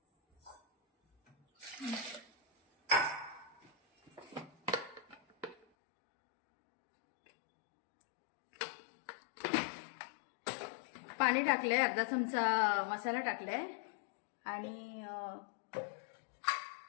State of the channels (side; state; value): right; drops out; at 5.7 s